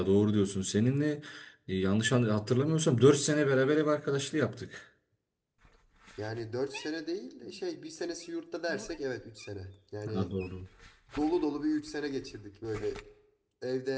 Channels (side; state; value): both; identical; correlation 1.00